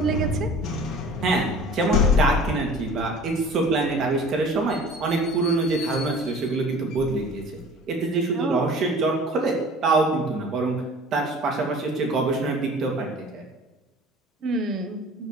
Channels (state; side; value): normal; both; correlation 0.45